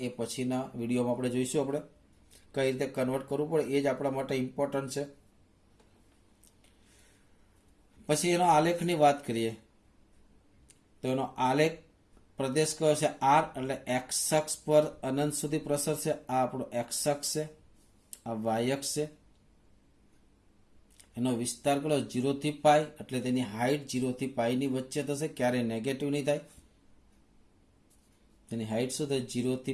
એ પછીના વિડીયોમાં આપણે જોઈશું આપણે કઈ રીતે કન્વર્ટ કરવું પડે, એ જ આપણા માટે ઇમ્પોર્ટન્ટ છે. પછી એનો આલેખની વાત કરીએ તો એનો આલેખ પ્રદેશ કયો છે? r, એટલે x અક્ષ પર અનંત સુધી પ્રસરશે. આ આપણો x અક્ષ છે, આ y અક્ષ છે. એનો વિસ્તાર કયો? 0 થી π, એટલે તેની હાઈટ 0 થી π ની વચ્ચે થશે, ક્યારેય નેગેટિવ નહીં થાય. તેની હાઈટ શું થાય? 0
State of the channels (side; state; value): both; identical; correlation 1.00